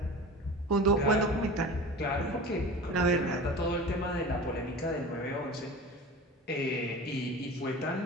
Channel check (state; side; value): normal; both; correlation 0.35